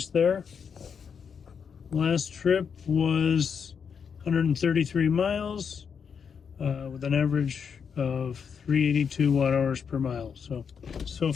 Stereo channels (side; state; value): right; quieter; 6.7 dB